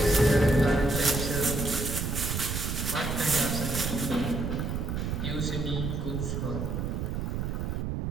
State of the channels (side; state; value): right; noise; rumble, 2 dB below the sound